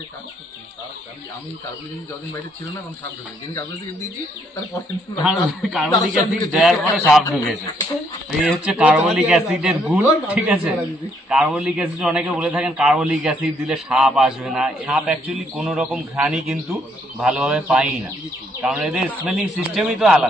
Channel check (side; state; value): both; normal; correlation 0.70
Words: কাজ করছে। আমি কার্বলিক অ্যাসিড যতদিন বাইরে ছিল না এখন সাপ ঢুকে, যেদিন কার্বলিক অ্যাসিড দিয়েছি তারপরে কার্বলিক অ্যাসিড দেওয়ার পরে সাপ ঢুকেছে। এই হচ্ছে কার্বলিক অ্যাসিডের গুণ, ঠিক আছে? কার্বলিক অ্যাসিড অনেকে বলে থাকেন কার্বলিক অ্যাসিড দিলে সাপ আসবে না। সাপ অ্যাকচুয়ালি কোন রকম ঘ্রাণই কিন্তু ভালোভাবে পাই না, কারণ এদের স্মেলিং সিস্টেমই তো